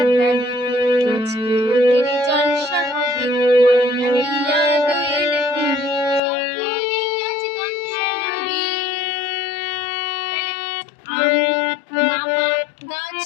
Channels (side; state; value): right; drops out; at 6.2 s